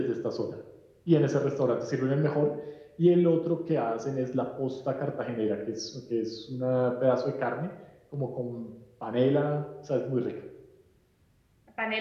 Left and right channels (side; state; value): both; identical; correlation 1.00